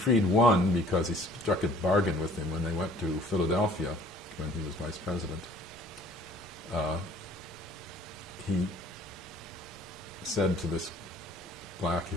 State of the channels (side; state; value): both; normal; correlation 0.54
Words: one because he struck a bargain with him when they went to Philadelphia when he was vice president. He said to this black